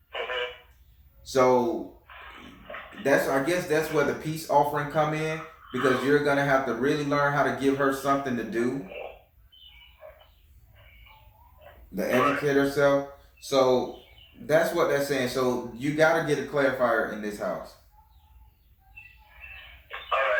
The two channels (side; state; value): both; identical; correlation 1.00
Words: So I guess that's where the peace offering come in, because you're gonna have to really learn how to give her something to do. To educate herself. So that's what that's saying. So you gotta get a clarifier in this house.